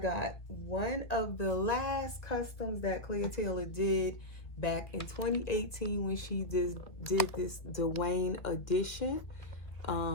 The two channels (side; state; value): right; late; 1.6 ms